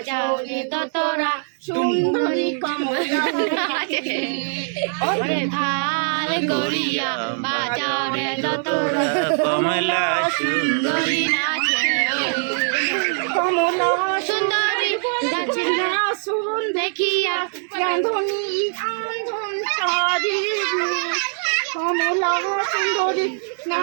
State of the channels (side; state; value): left; silent; digital silence